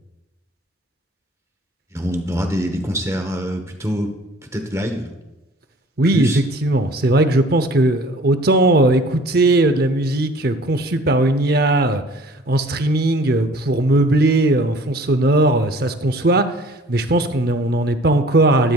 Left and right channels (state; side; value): normal; both; correlation 0.50